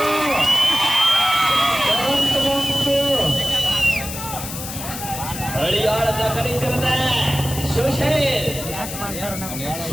ಹಳಿಯಾಳದ ಕಡಿಸಿರದ ಸುಶೀಲ್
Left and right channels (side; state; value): left; noise; hiss, 8 dB below the sound